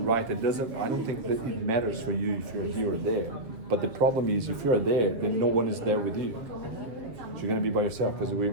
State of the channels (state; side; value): late; left; 7.3 ms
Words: write it. I don't think that it matters for you if you're here or there. But the problem is if you're there, then no one is there with you. So you're gonna be by yourself because